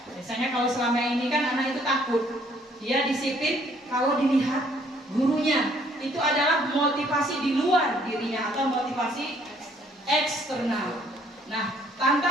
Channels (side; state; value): both; normal; correlation 0.63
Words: Biasanya kalau selama ini kan anak itu takut, dia disiplin kalau dilihat gurunya. Itu adalah motivasi di luar dirinya atau motivasi eksternal. Nah,